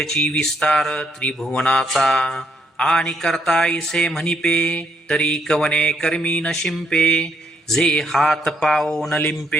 विस्तार त्रिभुवनाचा. आणि करता इसे म्हणिपे, तरी कवने कर्मी न शिंपे, जे हात पाओ न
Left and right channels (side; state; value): both; normal; correlation 0.72